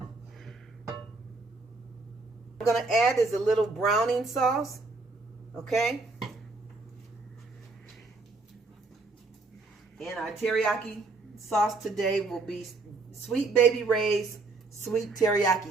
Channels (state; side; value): quieter; left; 3.6 dB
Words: I'm going to add is a little browning sauce, okay? And our teriyaki sauce today will be Sweet Baby Ray's sweet